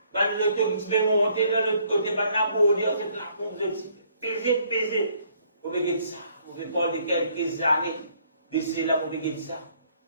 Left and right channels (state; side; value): inverted; both; correlation -0.65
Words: Je vais monter dans l'autre côté, je vais abonner, je vais la pompe de peser. Je vais gagner ça. Je vais prendre quelques années de cela pour gagner ça.